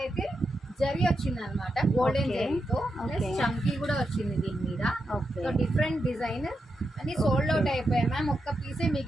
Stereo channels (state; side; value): normal; both; correlation 0.86